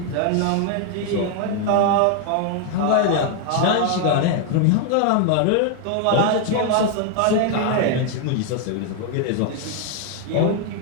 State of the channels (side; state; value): both; different; correlation 0.00